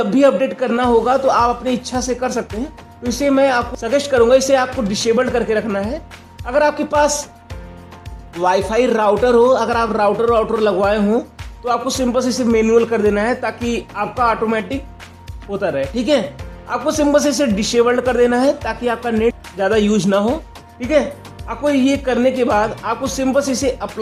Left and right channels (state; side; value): identical; both; correlation 1.00